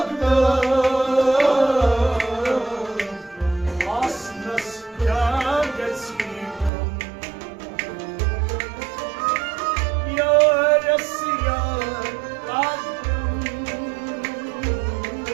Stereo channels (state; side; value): drops out; left; at 6.7 s